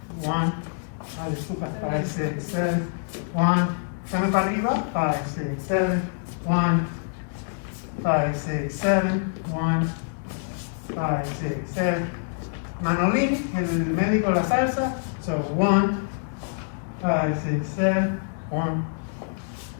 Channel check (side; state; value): right; silent; 61 dB below the other